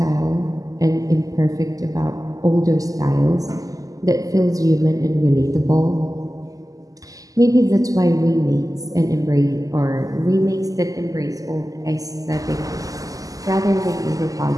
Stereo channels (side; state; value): left; late; 0.17 ms